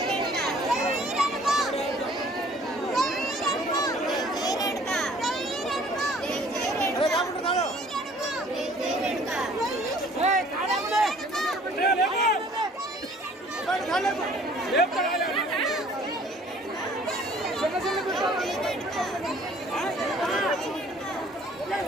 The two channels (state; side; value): normal; both; correlation 0.55